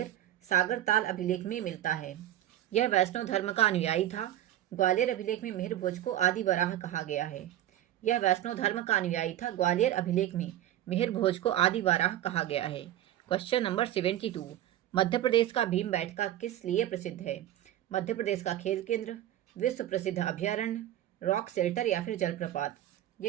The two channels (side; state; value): left; quieter; 12.7 dB